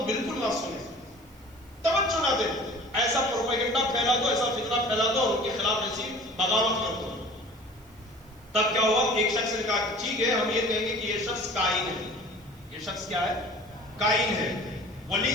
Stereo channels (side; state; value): right; noise; hiss, 28 dB below the sound